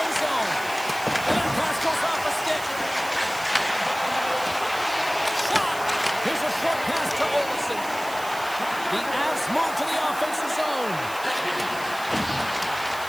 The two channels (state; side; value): noise; right; hiss, 15 dB below the sound